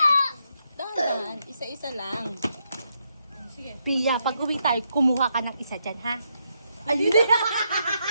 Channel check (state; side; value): inverted; both; correlation -0.79